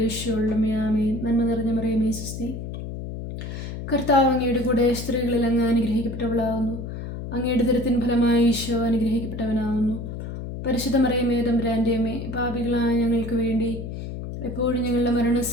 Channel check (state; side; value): noise; left; hum, 7 dB below the sound